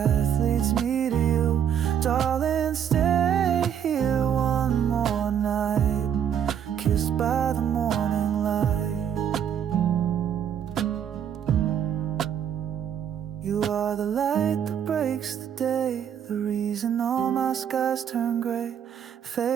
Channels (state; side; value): quieter; left; 8.8 dB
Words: leads me to you. Darling, stay here one more night, kissed by the morning light. skies turn gray,